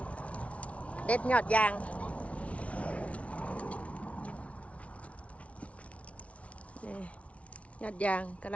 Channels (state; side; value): late; right; 0.064 ms